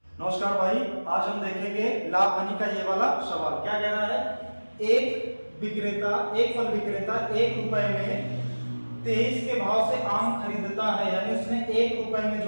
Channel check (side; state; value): both; inverted; correlation -1.00